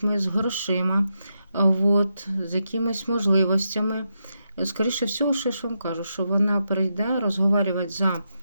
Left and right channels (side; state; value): both; inverted; correlation -0.84